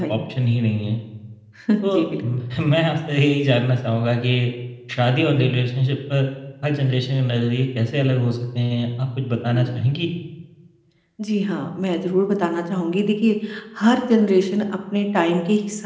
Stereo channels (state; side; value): identical; both; correlation 1.00